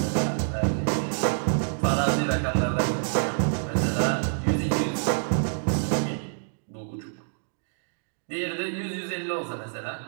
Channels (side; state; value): left; silent; digital silence